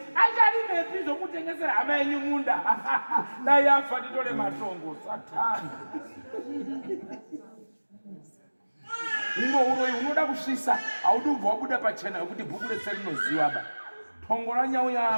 acharimepi zvokutengesera hama yenyu munda dai afa nditore matongo satani uno uroyi unoda kusvisa haudi ubva wabuda pachena yokuti bhuku rese rinoziva ba tongo ranyau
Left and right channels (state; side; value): inverted; both; correlation -1.00